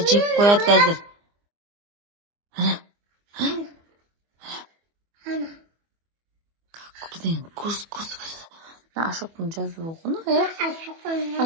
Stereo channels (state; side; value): late; left; 24 ms